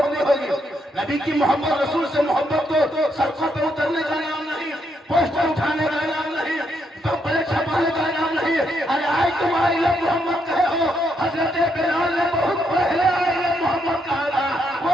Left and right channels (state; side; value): normal; both; correlation 0.77